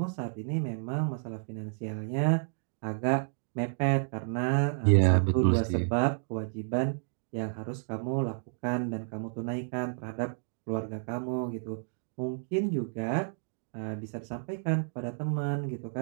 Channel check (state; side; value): silent; left; digital silence